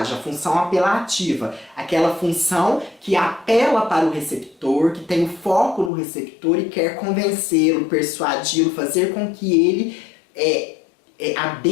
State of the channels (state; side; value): drops out; right; at 5.9 s